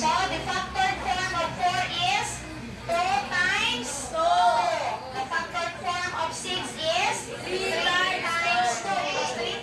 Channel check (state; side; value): identical; both; correlation 1.00